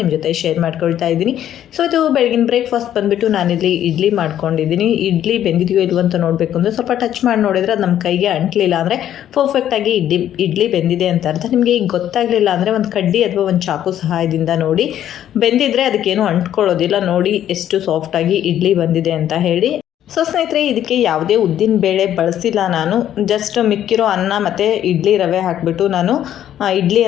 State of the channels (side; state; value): right; quieter; 11.1 dB